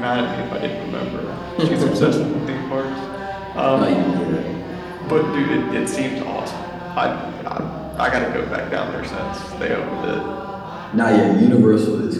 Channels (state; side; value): identical; both; correlation 1.00